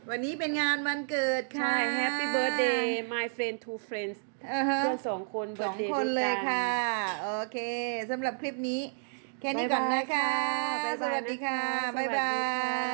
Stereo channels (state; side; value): silent; left; digital silence